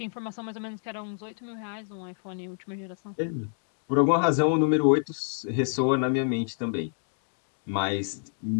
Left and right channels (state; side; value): silent; right; digital silence